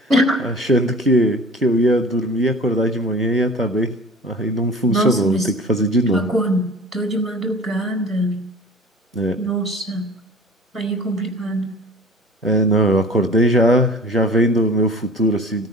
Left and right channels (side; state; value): both; normal; correlation 0.43